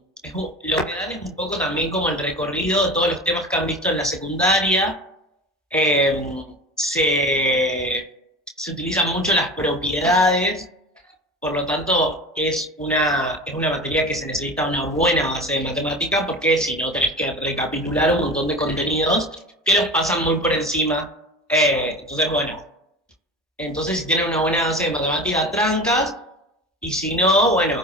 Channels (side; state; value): both; normal; correlation 0.33